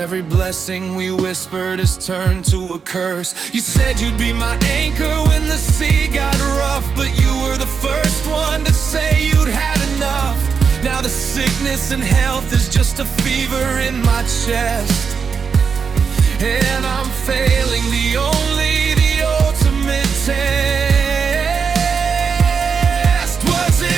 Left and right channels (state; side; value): quieter; left; 5.9 dB